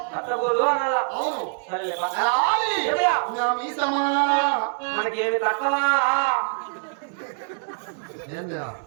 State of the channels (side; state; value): left; silent; 62 dB below the other